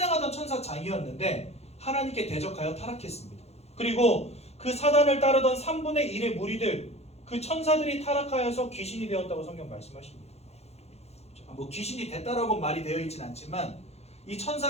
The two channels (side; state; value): right; late; 0.31 ms